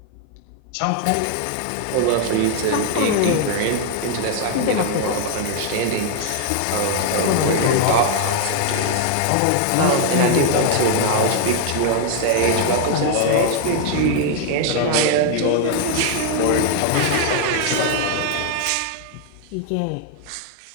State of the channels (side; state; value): both; different; correlation 0.00